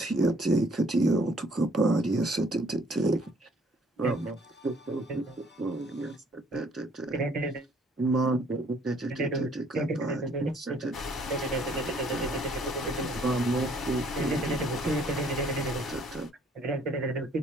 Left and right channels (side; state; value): both; normal; correlation 0.61